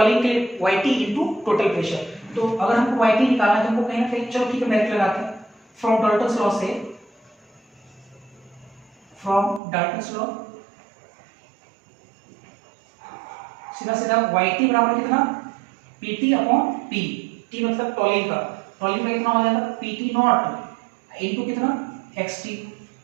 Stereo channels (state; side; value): drops out; left; at 9.6 s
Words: के लिए YT इनटू टोटल प्रेशर। तो अगर हमको YT निकालना है तो हमको कहीं ना कहीं, चलो ठीक है डायरेक्ट लगाते हैं, फ्रॉम डाल्टन्स लॉ से, फ्रॉम डाल्टन्स लॉ सीधा सीधा YT बराबर कितना PT अपॉन P, T मतलब टॉलीन का कितना हो जाएगा PT नॉट इनटू कितना XT,